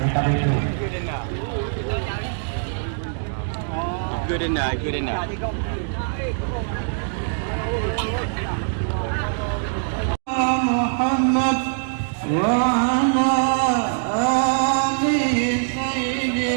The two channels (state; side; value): silent; left; digital silence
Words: itu. Good enough, good enough. Muhammad wa ala ali